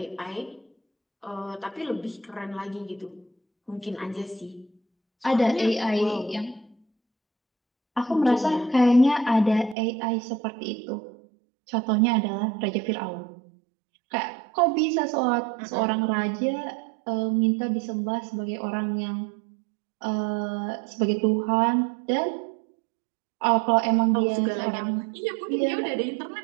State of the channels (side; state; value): left; drops out; at 9.8 s